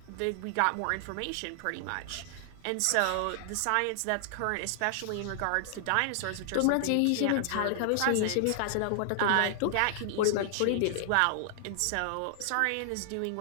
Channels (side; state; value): both; different; correlation -0.01